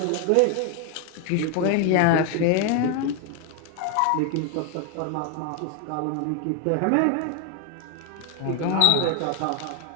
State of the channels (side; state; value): both; different; correlation 0.00